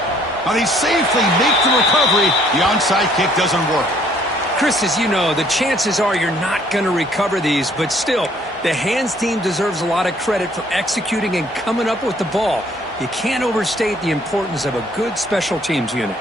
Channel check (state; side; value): normal; both; correlation 0.62